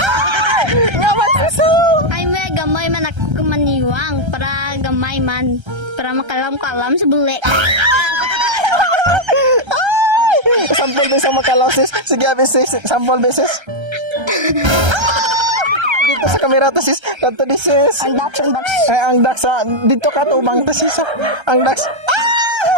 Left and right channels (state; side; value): late; left; 1.3 ms